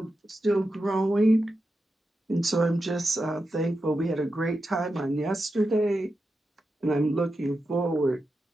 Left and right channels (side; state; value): both; normal; correlation 0.89